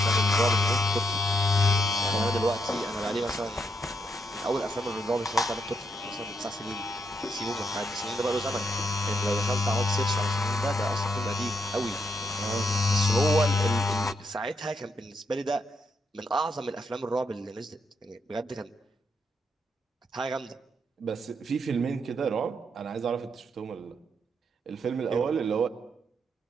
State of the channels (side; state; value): both; normal; correlation 0.78